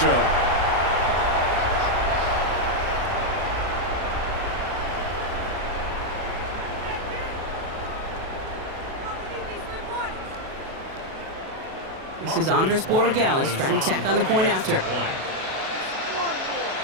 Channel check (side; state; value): left; late; 37 ms